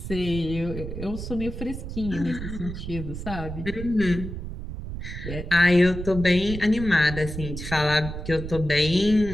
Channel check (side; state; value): right; noise; rumble, 8 dB below the sound